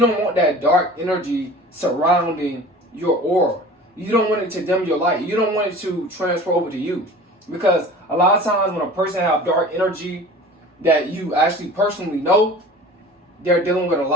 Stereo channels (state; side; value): normal; both; correlation 0.41